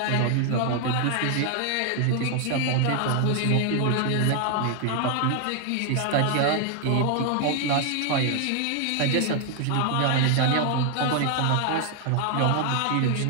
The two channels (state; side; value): different; both; correlation 0.00